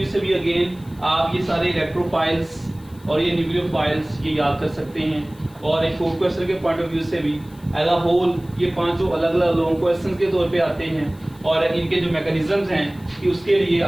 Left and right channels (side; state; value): left; noise; hiss, 27 dB below the sound